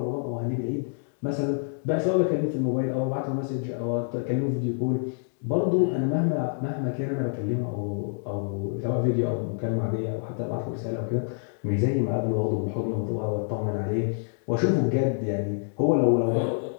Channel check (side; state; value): right; silent; 60 dB below the other